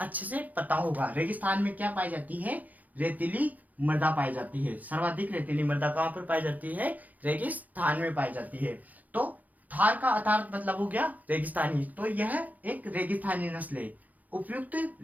अच्छे से पता होगा। रेगिस्तान में क्या पाई जाती है, रेतीली मृदा पाई जाती है। सर्वाधिक रेतीली मृदा कहाँ पर पाई जाती है? रेगिस्तान में पाई जाती है। तो थार का अर्थात मतलब हो गया रेगिस्तानी, तो यह एक रेगिस्तानी नस्ल है। उपयुक्त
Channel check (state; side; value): late; left; 0.078 ms